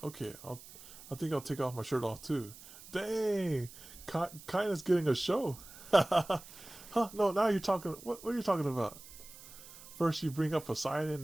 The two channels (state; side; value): noise; right; hiss, 17 dB below the sound